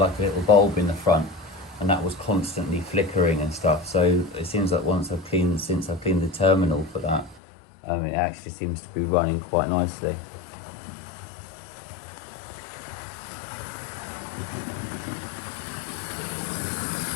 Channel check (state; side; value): drops out; right; at 7.4 s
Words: a little bulb in the front, and that was constantly flickering and stuff. So it seems like since I've cleaned the terminal for that, it actually seems to be running quite nicely.